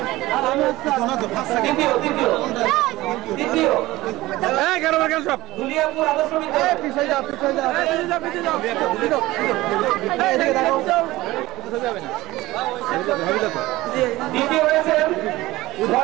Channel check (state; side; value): quieter; left; 18.3 dB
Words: আর আমি দ্বিতীয় দুনিয়াপুর আদর্শ দ্বিতীয় হয়েছেন